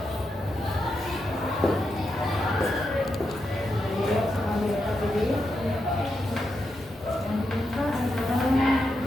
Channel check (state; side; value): normal; both; correlation 0.85